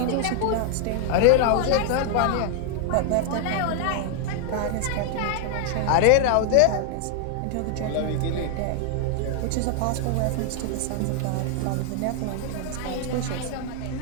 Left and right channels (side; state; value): both; different; correlation 0.00